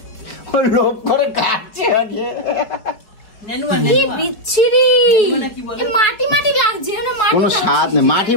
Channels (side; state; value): right; late; 4.7 ms